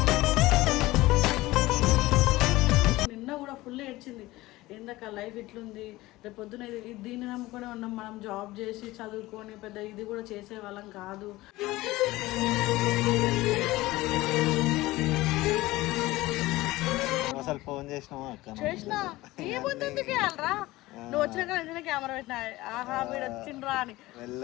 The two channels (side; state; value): right; quieter; 18.6 dB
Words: నిన్న కూడా ఫుల్ ఏడ్చింది. ఏందక్క లైఫ్ ఇట్లుంది, రేపు పొద్దున దీన్ని నమ్ముకొని ఉన్నాం, మనం జాబ్ చేసి చదువుకొని పెద్ద ఇది కూడా చేసే వాళ్ళం కాదు. అసలు ఫోన్ చేసినావా చేసినా ఏముందుకు వెళ్ళరా నువ్వు వచ్చినాక వెంటనే కెమెరా పెట్టినా ఆహా వీడు వచ్చిండ్రా అని.